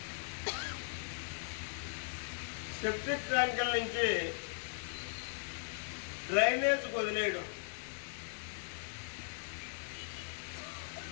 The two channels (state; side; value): silent; right; digital silence